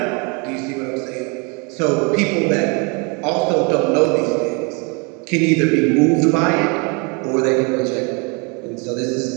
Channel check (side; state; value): left; quieter; 32.3 dB